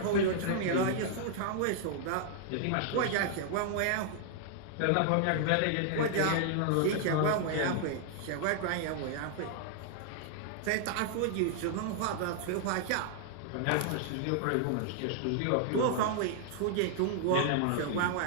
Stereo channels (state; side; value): different; both; correlation -0.01